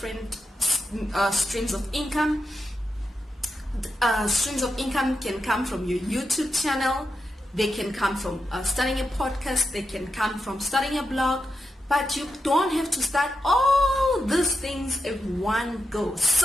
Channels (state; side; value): normal; both; correlation 0.87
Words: streams of income. Streams of income can come from your YouTube channel. They can come from starting a podcast. They can come from starting a blog. But you don't have to start all these things in one go.